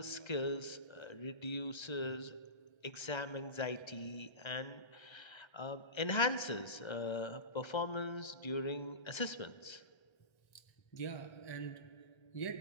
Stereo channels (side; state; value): right; late; 1.3 ms